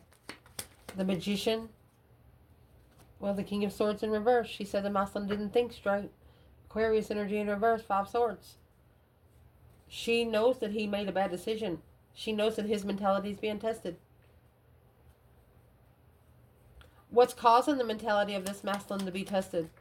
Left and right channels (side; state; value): both; identical; correlation 1.00